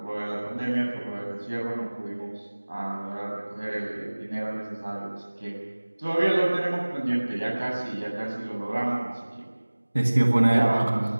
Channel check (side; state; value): both; inverted; correlation -1.00